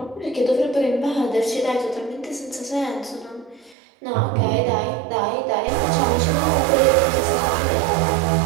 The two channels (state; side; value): drops out; left; at 3.8 s